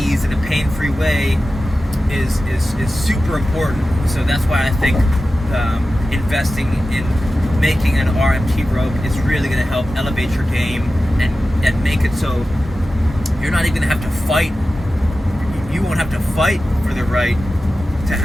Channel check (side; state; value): both; normal; correlation 0.94